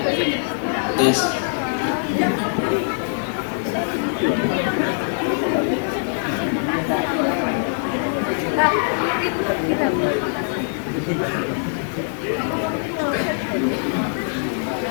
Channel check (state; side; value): silent; right; digital silence